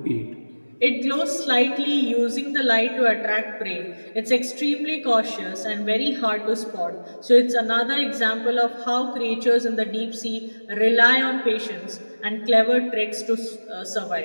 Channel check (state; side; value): inverted; both; correlation -1.00